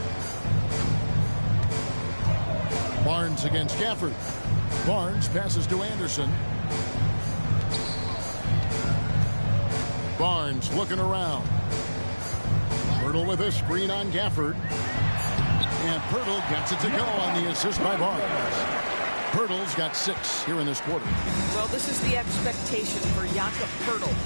Barnes against Gafford. Barnes passes to Anderson. Barnes looking around. Pirtle with a screen on Gafford. And Pirtle gets it to go on the assist by Barnes. Pirtle's got 6 here in this quarter. Well, this is the expectation for Jakob Pirtle.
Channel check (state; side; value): inverted; both; correlation -1.00